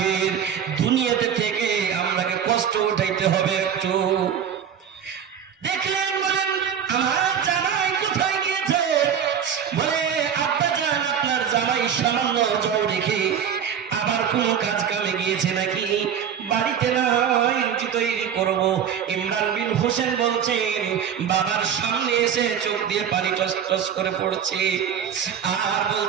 দুনিয়াতে থেকে আমরাকে কষ্ট উঠাইতে হবে একটু। দেখলেন বলেন আমার জামাই কোথায় গিয়েছে, বলে আব্বা জান আপনার জামাই সামান্য জ্বর রেখে আবার কোন কাজ কামে গিয়েছে নাকি, বাড়িতে নাই রুটি তৈরি করব। ইমরান বিন হোসেন বলছেন বাবার সামনে এসে চোখ দিয়ে পানি টস টস করে পড়ছে আর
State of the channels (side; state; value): left; quieter; 8.3 dB